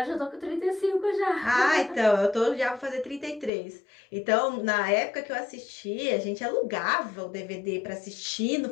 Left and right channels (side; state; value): right; drops out; at 3.5 s